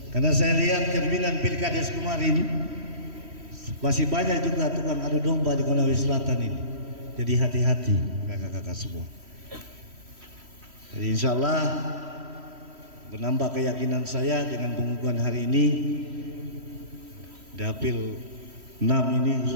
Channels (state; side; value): late; left; 3.1 ms